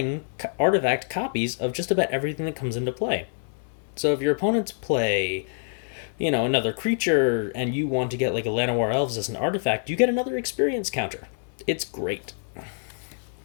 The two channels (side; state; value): right; silent; digital silence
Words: artifact copies of just about everything that comes into play. So if your opponents play, another creature, and you want to get like a Llanowar Elves as an artifact, you get another experience counter. It's great.